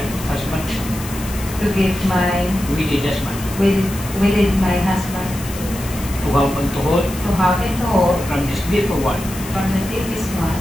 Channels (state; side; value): noise; left; hiss, 13 dB below the sound